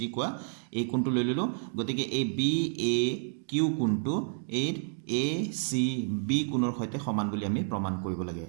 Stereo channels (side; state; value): left; silent; digital silence